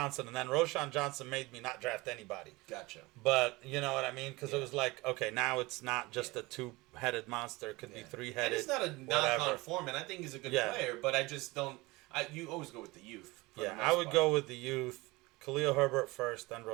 and then Rashawn Johnson made me not draft anybody. Gotcha. But you know what I mean? Because it was like, okay, now it's not just a 2-headed monster. It could be 3-headed. And it's not a knock on Foreman. I think he's a good player, but I just don't. You always go with the youth. Yeah, I would go with the youth. Khalil Herbert first, then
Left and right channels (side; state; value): left; quieter; 22.4 dB